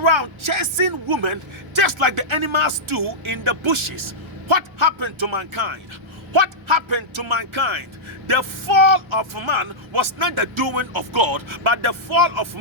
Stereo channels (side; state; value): left; late; 1.4 ms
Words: chasing women just like the animals do in the bushes. What happened to mankind? What happened to mankind? The fall of man was not the doing of God, but the fall of